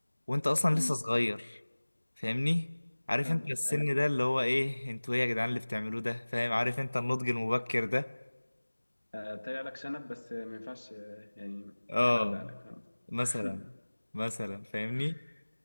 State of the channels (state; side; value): inverted; both; correlation -1.00